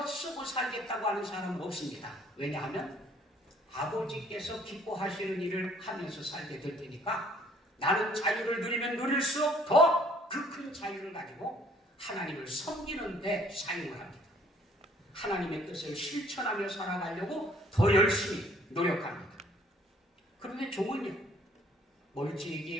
쓰고 살겠다고 하는 사람은 없습니다. 왜냐하면 아버지께서 기뻐하시는 일을 하면서 살게 될 테니까 나는 자유를 누리면 누릴수록 더 그 큰 자유를 가지고 하나님을 섬기는 데 사용을 합니다. 하나님의 뜻을 실천하며 살아가려고 더 열심히 노력합니다. 그런데 종은요,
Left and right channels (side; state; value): both; normal; correlation 0.60